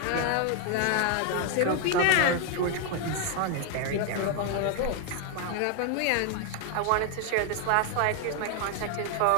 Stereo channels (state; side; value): different; both; correlation 0.00